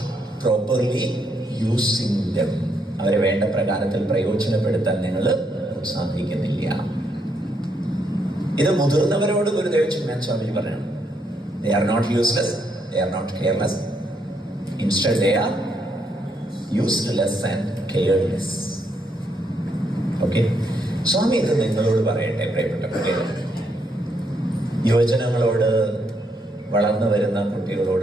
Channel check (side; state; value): both; normal; correlation 0.76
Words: properly using them. അവരെ വേണ്ട പ്രകാരത്തിൽ പ്രയോജനപ്പെടുത്താൻ നിങ്ങൾ സാധിക്കുന്നില്ല. ഇത് മുതിർന്നവരോട് ഗുരുദേവ് ചിന്മയാനന്ദ സ്വാമിജി പറഞ്ഞു. They are not useless, they are not careless. Instead they are useless and careless. Okay? സ്വാമി ഇത് നിങ്ങളോട് പറയട്ടെ, പ്രിയപ്പെട്ട കുട്ടികൾ. യുവജനങ്ങളോട്, വളർന്നു വരുന്ന